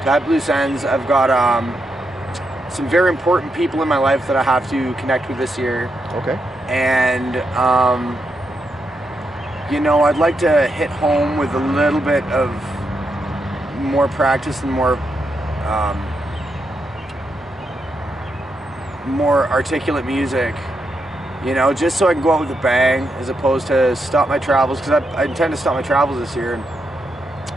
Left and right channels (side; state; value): both; normal; correlation 0.83